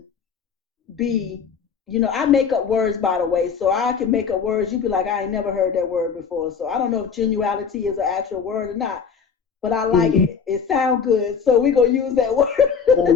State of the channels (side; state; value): right; quieter; 6.3 dB